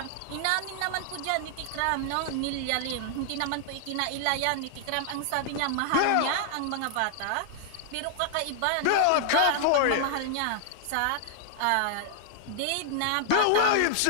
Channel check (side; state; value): both; different; correlation -0.01